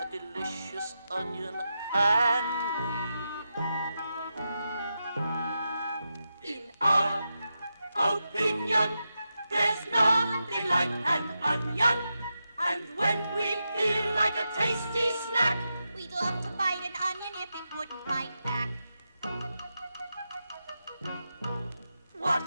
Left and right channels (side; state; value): both; inverted; correlation -0.88